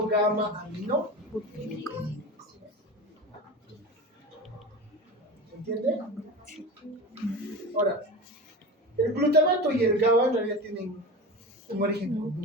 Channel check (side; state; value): both; normal; correlation 0.28